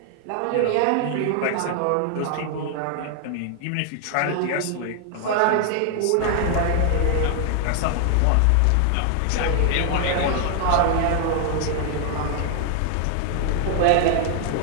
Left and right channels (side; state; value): both; different; correlation 0.00